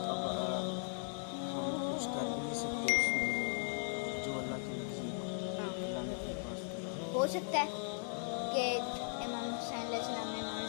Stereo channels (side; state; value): right; silent; digital silence